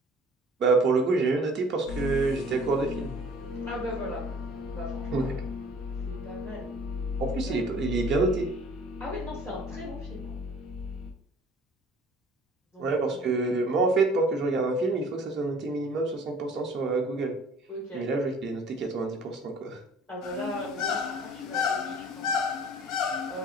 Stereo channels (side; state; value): both; normal; correlation 0.51